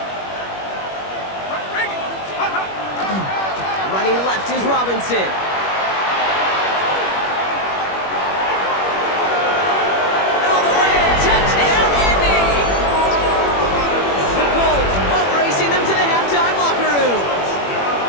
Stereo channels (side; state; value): right; late; 21 ms